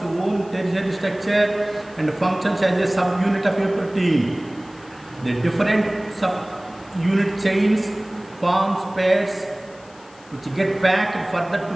own tertiary structure and functions as a subunit of a protein. The different subunit chains forms pairs which get packed further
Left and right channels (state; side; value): noise; left; hiss, 26 dB below the sound